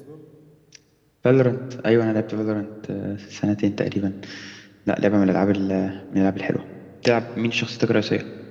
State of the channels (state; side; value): identical; both; correlation 1.00